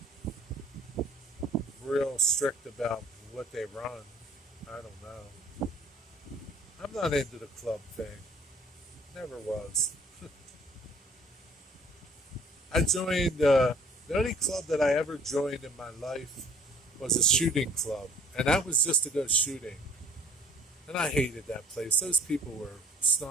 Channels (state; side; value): normal; both; correlation 0.54